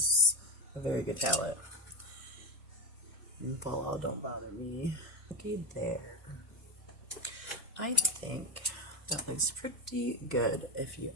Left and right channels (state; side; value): normal; both; correlation 0.13